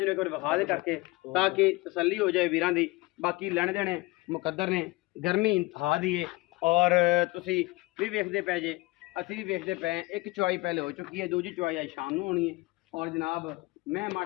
एक बार विखा दे करके ताकि तसल्ली हो जाए वीरां दी। बाकी लैने देने मुकद्दर ने गर्मी इंतहा दी है और तुसी भी वेखदे पे जे असी भी वेखदे पे एक चवाई पहले हो चुकी है दूजी चवाई आज शाम को होनी है। और जनाब मैं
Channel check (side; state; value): right; quieter; 22.0 dB